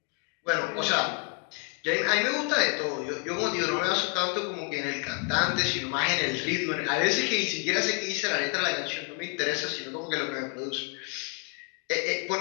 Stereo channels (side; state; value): right; quieter; 35.1 dB